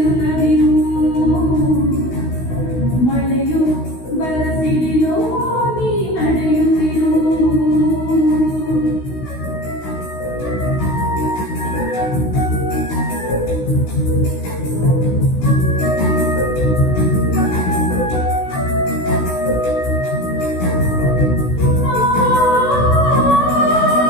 ಮಳೆಯು ಬರಸಿಡಿಲೋ ನೀ ನಡೆಯುತ್ತಿರು.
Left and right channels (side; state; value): right; late; 16 ms